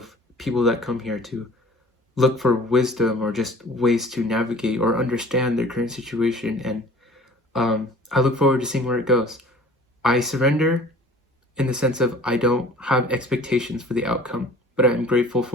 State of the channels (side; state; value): both; normal; correlation 0.48